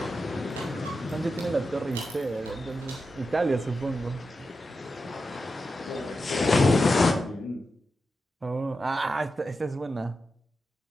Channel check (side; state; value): both; normal; correlation 0.90